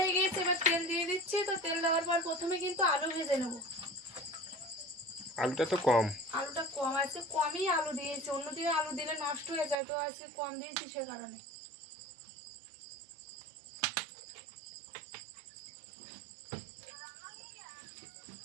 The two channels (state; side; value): drops out; left; at 9.8 s